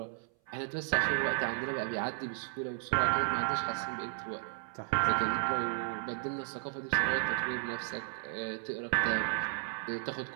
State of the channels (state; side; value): silent; left; 55 dB below the other